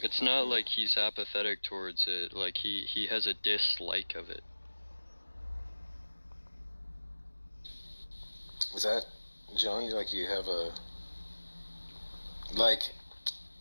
It's not like he's apathetic towards it, like he has a dislike of it. Is that, John, like you have a... Like,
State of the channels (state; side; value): inverted; both; correlation -1.00